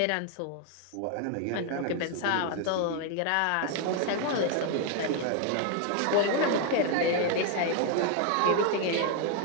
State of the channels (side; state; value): both; different; correlation 0.01